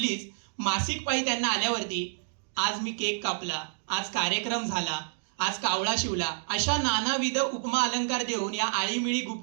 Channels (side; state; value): left; silent; digital silence